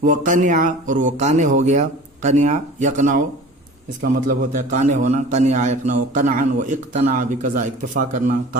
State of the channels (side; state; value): both; normal; correlation 0.41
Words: وہ قنع، اور وہ قانع ہو گیا. قنع یقنع، اس کا مطلب ہوتا ہے قانع ہونا. قنع یقنع قنعا، و اقتنع بقضاء، اکتفا کرنا،